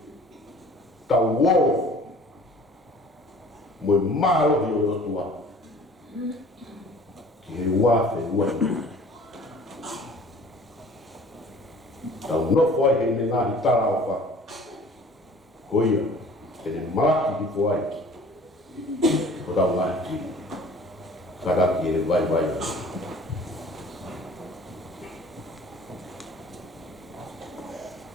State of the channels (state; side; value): normal; both; correlation 0.49